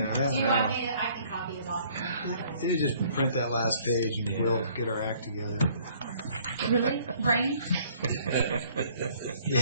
want me to, I can copy it off. You just print that last page, and we'll get our act together. Really? Brian?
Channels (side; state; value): both; inverted; correlation -0.59